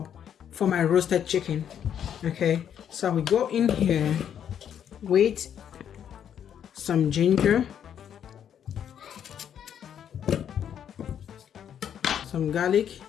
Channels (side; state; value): right; quieter; 9.1 dB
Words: for my roasted chicken. Okay, so we go in here with some ginger, some garlic,